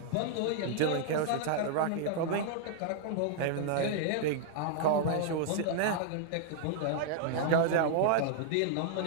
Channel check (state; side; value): different; both; correlation -0.01